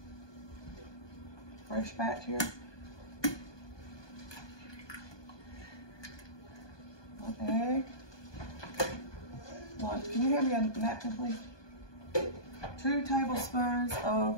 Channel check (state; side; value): late; right; 1.2 ms